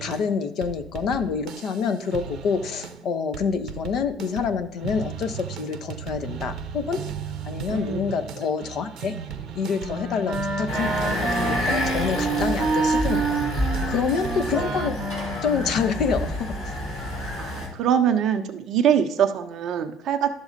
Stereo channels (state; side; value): normal; both; correlation 0.53